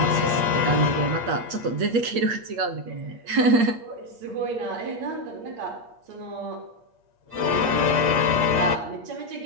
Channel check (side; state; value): left; late; 8.6 ms